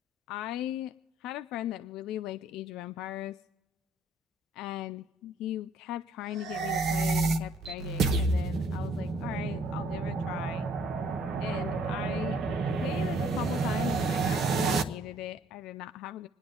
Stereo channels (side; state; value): both; normal; correlation 0.61